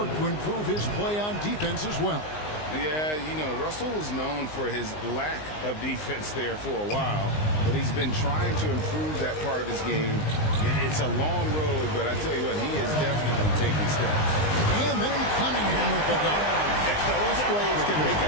to improve his play on defense as well. Yeah, you know, Russell was known for his lack of defense there for a while, but he's been trying to improve that part of his game. It's a long road, but I tell you what, he is definitely taking steps. And then Cunningham with the dunk. Those plays can make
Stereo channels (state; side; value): late; right; 19 ms